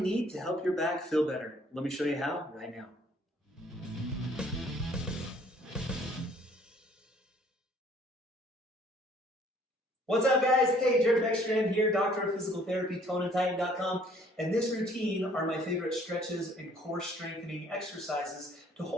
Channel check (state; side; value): normal; both; correlation 0.59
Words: to help your back feel better. Let me show you how right now. What's up, guys? Hey, Jared Beckstrand here, Doctor of Physical Therapy, ToneAndTighten.com, and this routine are my favorite stretches and core strengthening exercises to